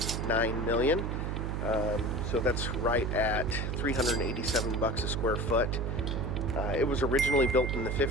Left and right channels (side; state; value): right; noise; hum, 2 dB below the sound